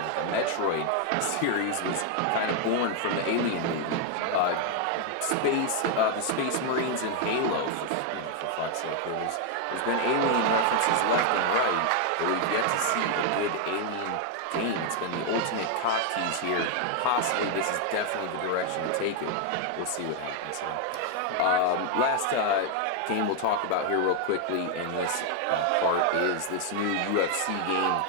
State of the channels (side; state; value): both; different; correlation 0.00